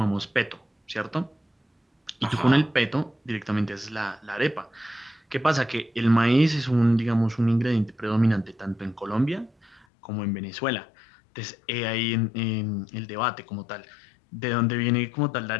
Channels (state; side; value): drops out; right; at 9.9 s